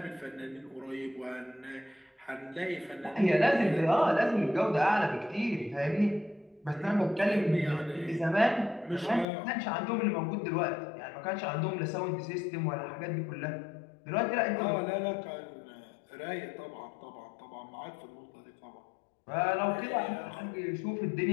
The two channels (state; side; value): drops out; right; at 9.2 s